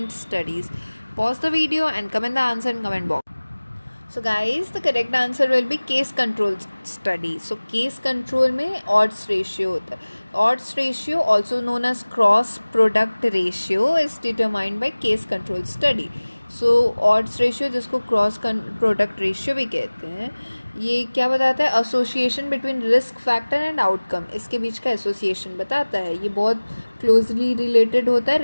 studies. Pause the video and comment the answer in comment box. So guys, the correct answer will be case control study. So case control में odds ratio होता है. Odds ratio, also known as cross product ratio, is determined by case control study. So odds ratio, जिसको cross product ratio भी कहते हैं, ये क्या बताता है? Association between risk factor and outcome. इसके बीच का एसोसिएशन बताता है. ये बहुत क्लोजली रिलेटेड होता है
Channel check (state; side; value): inverted; both; correlation -1.00